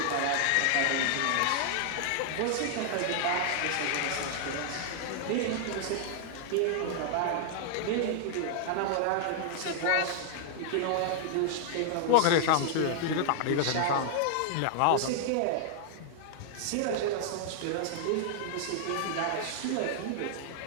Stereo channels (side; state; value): both; different; correlation -0.01